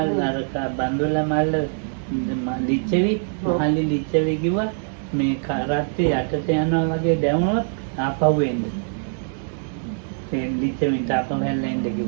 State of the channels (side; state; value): left; silent; 63 dB below the other